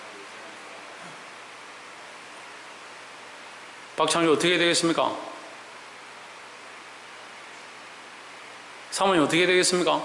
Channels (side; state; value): both; identical; correlation 1.00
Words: 박창주 어떻게 해야 되겠습니까? 사모님 어떻게 되겠습니까?